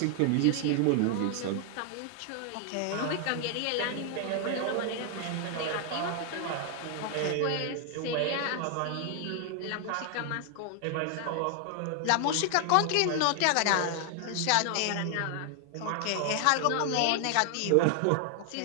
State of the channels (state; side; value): different; both; correlation 0.00